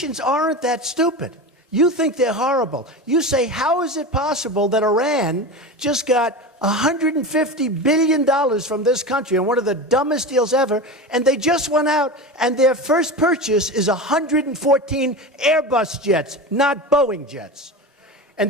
aren't that stupid. You think they're horrible. You say, how is it possible that Iran just got $150 billion from this country on one of the dumbest deals ever, and they just went out and their first purchase is 114 Airbus jets, not Boeing jets. And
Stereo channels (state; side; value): normal; both; correlation 0.26